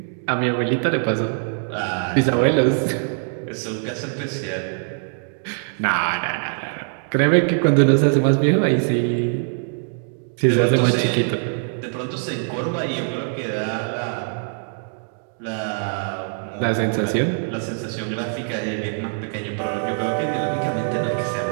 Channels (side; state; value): left; silent; digital silence